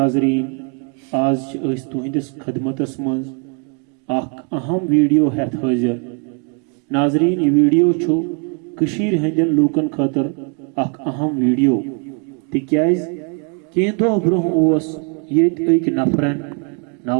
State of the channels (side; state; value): left; quieter; 37.1 dB